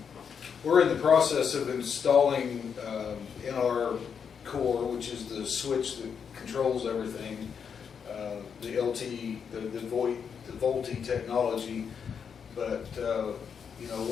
We're in the process of installing in our core, which is the switch that controls everything, the LTE, the VoLTE technology. But you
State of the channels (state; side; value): quieter; right; 6.9 dB